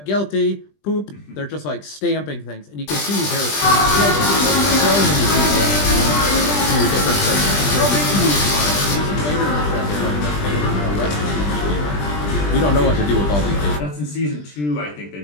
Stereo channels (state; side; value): late; right; 20 ms